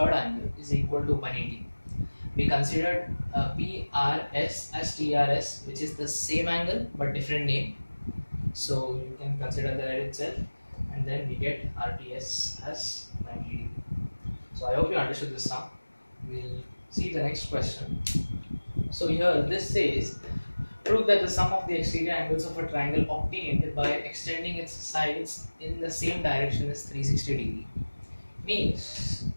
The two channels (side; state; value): both; inverted; correlation -1.00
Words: angle is equal to 180. We considered PRS as TRS, which is the same angle but different name. So you can consider that itself, and then we get RTS as 90 degree. So I hope you understood this now. We'll see the next question. So here this says, prove that the sum of the exterior angles of a triangle obtained by extending its sides in the same direction is 360 degree. Means